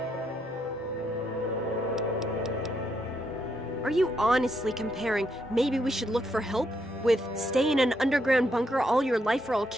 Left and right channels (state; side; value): normal; both; correlation 0.77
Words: Are you honestly comparing maybe we should look for help with stay in an underground bunker all your life or I'll